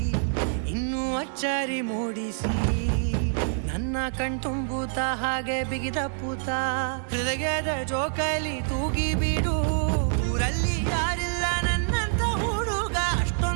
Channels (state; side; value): silent; left; 58 dB below the other